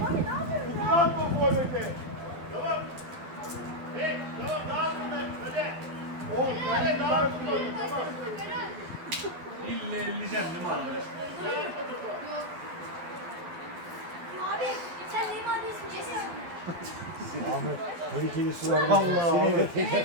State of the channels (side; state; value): left; late; 12 ms